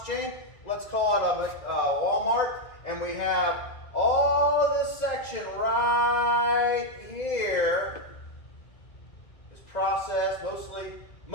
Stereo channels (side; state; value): right; late; 1.9 ms